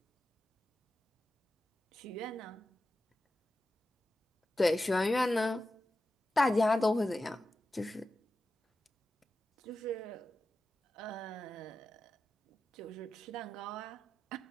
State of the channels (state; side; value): normal; both; correlation 0.92